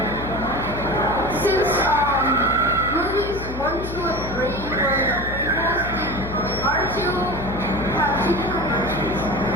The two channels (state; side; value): noise; left; hum, 9 dB below the sound